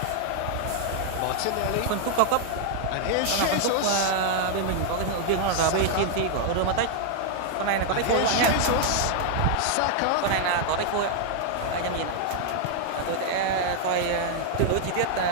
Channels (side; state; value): both; different; correlation 0.00